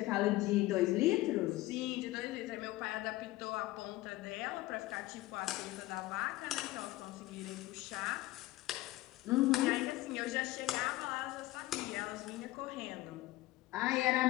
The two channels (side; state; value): right; quieter; 17.8 dB